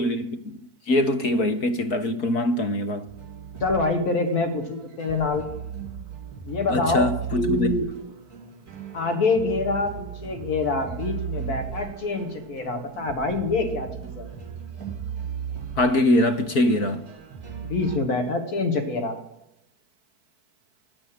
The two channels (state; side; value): late; right; 4.6 ms